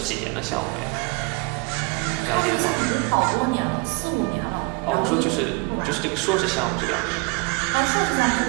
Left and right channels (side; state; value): left; quieter; 28.7 dB